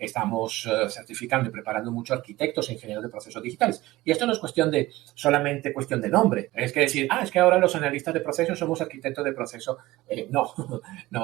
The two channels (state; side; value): quieter; left; 18.3 dB